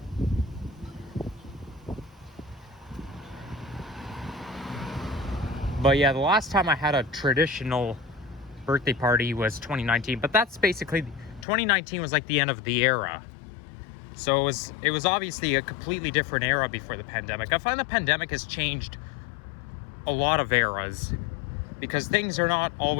But yeah, the last time I had a traditional birthday party was 2019, but that's basically, 2019 was like the end of the era. So it was obviously a completely different era before the pandemic. I find the pandemic has changed a lot of eras because things are not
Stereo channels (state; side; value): drops out; right; at 11.5 s